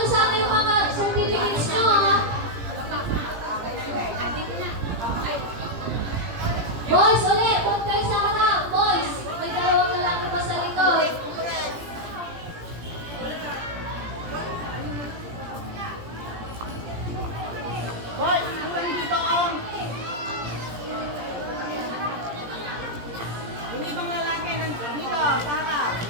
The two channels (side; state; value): left; late; 17 ms